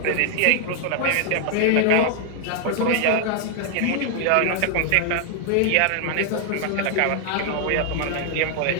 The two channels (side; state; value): both; different; correlation 0.00